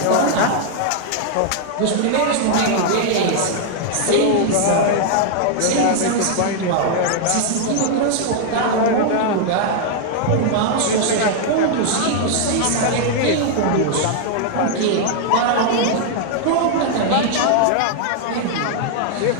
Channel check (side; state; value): both; different; correlation 0.00